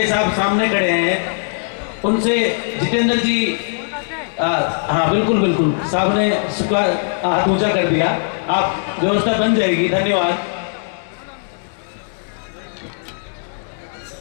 साहब सामने खड़े हैं, उनसे जितेंद्र जी हाँ बिल्कुल बिल्कुल साहब ने हाथ ऊंचा कर दिया। आप व्यवस्था बन जाएगी। धन्यवाद।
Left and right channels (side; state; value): right; silent; digital silence